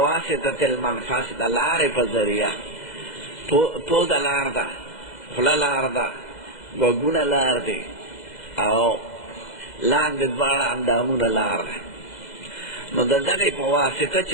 المنفس دا لار پا ذریعہ پو دا لار دا خلا لار دا گوگون لار دی او لاند دوارا اندامون لار دی. نو دا دغی پا واسطه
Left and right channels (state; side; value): late; right; 2.0 ms